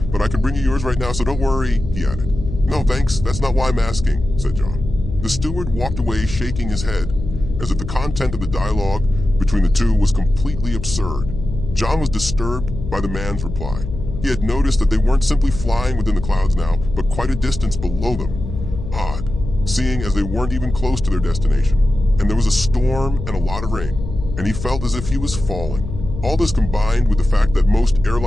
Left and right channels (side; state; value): left; noise; hum, 8 dB below the sound